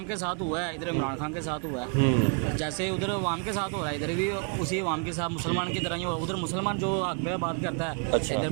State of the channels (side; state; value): left; quieter; 37.2 dB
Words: के साथ हुआ है, इधर इमरान खान के साथ हुआ है, जैसे उधर अवाम के साथ हो रहा है, इधर भी उसी अवाम के साथ मुसलमान की तरह ही हो। उधर मुसलमान जो हक पे बात करता है, अच्छा, इधर